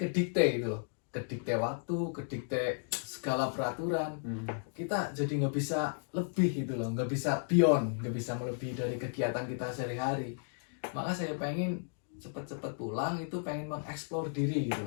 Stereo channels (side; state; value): right; silent; digital silence